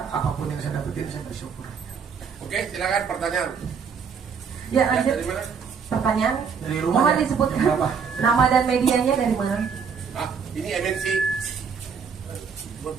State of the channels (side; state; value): left; quieter; 6.3 dB